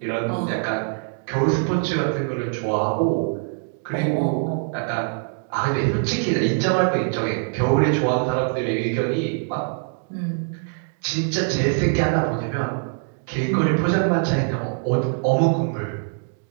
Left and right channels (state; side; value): silent; left; 56 dB below the other